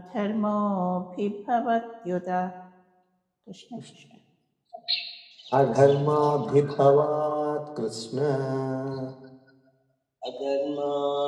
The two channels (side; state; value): both; identical; correlation 1.00